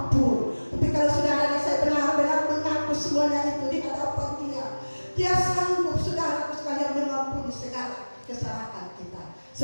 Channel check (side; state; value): both; inverted; correlation -1.00